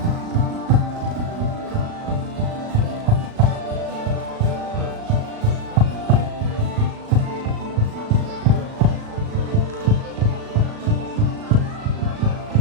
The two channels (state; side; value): late; left; 37 ms